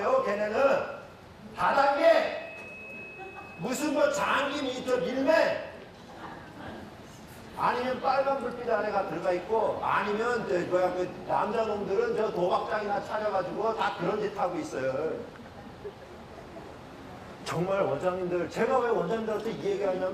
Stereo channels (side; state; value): both; identical; correlation 1.00